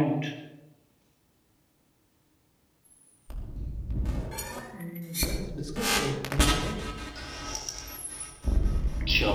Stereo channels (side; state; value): both; identical; correlation 1.00